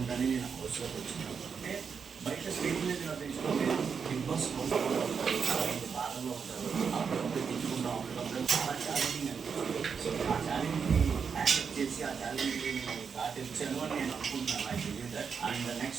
నేను హౌస్లోకి వచ్చినాను. అంటే బయట స్క్రీన్ మీద నటించుకుంటే బిగ్ బాస్ హౌస్ బాధలో ఉంటారు, అప్పుడప్పుడు తెచ్చుకుంటాం, అప్పుడప్పుడు చాలా ఛాలెంజింగ్ అనిపిస్తుంది. సో ఆ ఛాలెంజ్ని యాక్సెప్ట్ చేసి ఆ ఛాలెంజ్ని నేను దాటించాను అని నేను అనుకుంటున్నాను. I believe that. And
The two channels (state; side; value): quieter; left; 6.2 dB